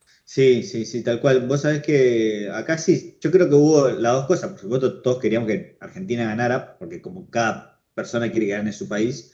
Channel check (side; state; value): both; identical; correlation 1.00